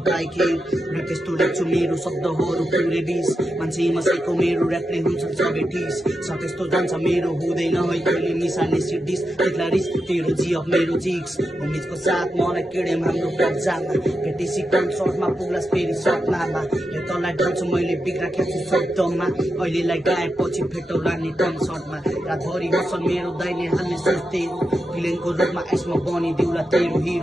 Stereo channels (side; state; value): both; normal; correlation 0.87